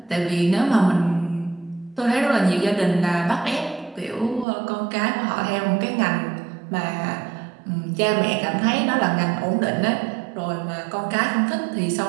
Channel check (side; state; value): left; drops out; at 4.5 s